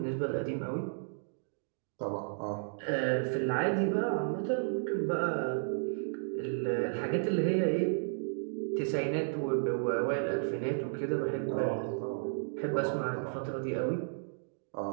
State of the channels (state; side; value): silent; left; digital silence